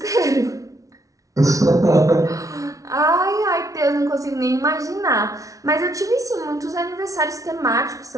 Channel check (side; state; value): left; late; 0.17 ms